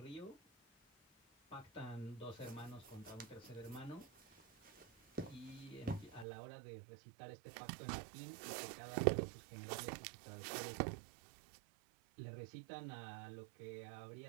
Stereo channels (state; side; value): drops out; left; at 6.2 s